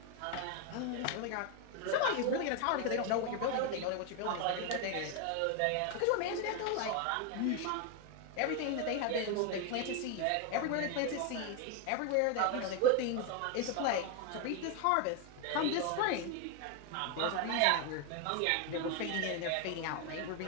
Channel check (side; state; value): both; different; correlation 0.01